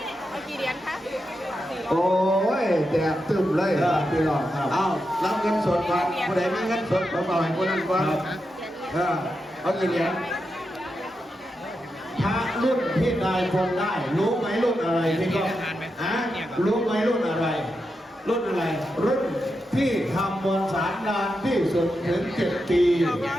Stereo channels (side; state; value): both; normal; correlation 0.87